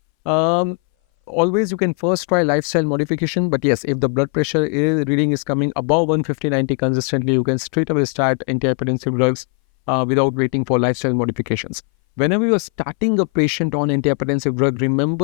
Always you can first try lifestyle modification, but yes, if the blood pressure reading is coming above 150/90 consistently, you can straight away start antihypertensive drugs without waiting for lifestyle modifications. Whenever you are starting a patient on antihypertensive drug,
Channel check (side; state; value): right; quieter; 38.1 dB